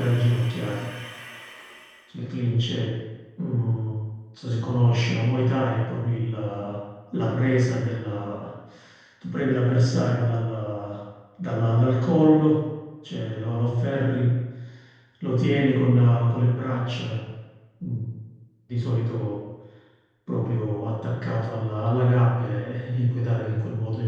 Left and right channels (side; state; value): both; identical; correlation 1.00